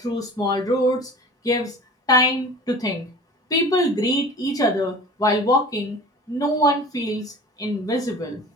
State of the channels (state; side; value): normal; both; correlation 0.40